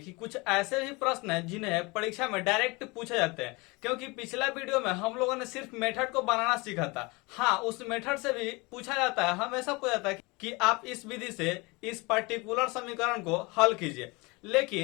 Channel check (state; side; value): quieter; right; 25.7 dB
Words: कुछ ऐसे भी प्रश्न हैं जिन्हें परीक्षा में डायरेक्ट पूछे जाते हैं, क्योंकि पिछला वीडियो में हम लोगों ने सिर्फ मेथड को बनाना सीखा था। हाँ, उस मेथड से भी पूछा जाता है, हमेशा पूछा जाता है कि आप इस विधि से इस पर्टिकुलर समीकरण को हल कीजिए।